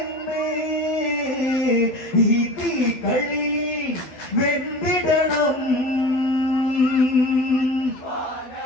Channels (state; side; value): late; right; 12 ms